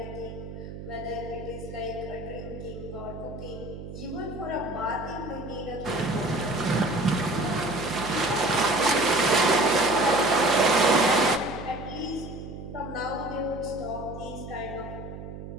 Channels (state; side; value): noise; right; hum, 11 dB below the sound